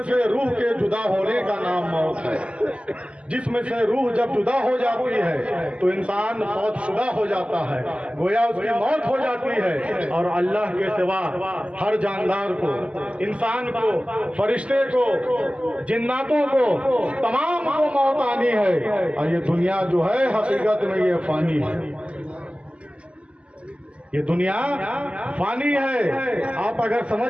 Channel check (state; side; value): late; left; 0.057 ms